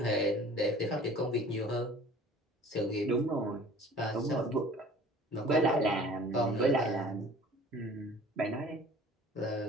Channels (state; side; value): normal; both; correlation 0.48